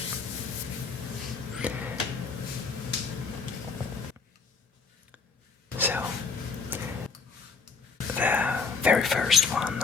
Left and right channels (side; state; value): right; quieter; 5.0 dB